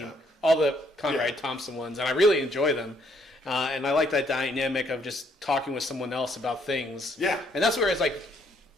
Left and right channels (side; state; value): both; normal; correlation 0.68